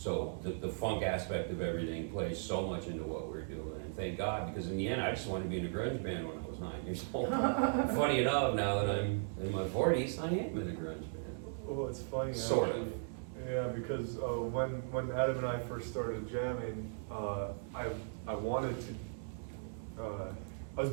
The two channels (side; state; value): left; silent; 53 dB below the other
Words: the funk aspect of everything plays so much into what we're doing. And thank God, because in the end, I just wanted to be in a grunge band when I was 9 years old. Funny enough, now that I'm in my 40s, I am in a grunge band. Well, it's funny. Sort actually. of. Yeah, because when Adam and I first started jamming, I wanted to. I was